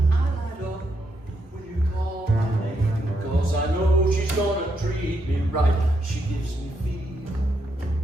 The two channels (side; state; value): both; normal; correlation 0.79